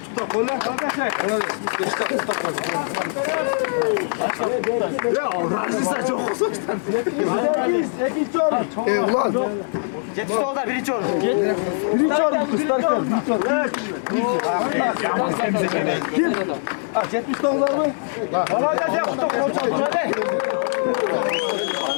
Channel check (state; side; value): silent; right; digital silence